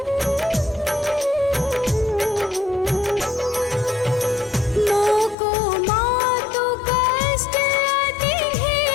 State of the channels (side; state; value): right; drops out; at 5.4 s